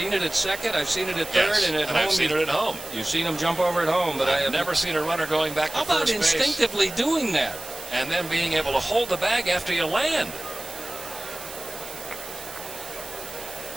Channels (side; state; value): right; noise; hiss, 13 dB below the sound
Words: it at second. I've seen it at third, Yes, and at home. I've seen it at home. You've seen him jump over at home, but I have never seen a runner going back to How about first base. instinctively doing that? And then being able to hold the bag after you land.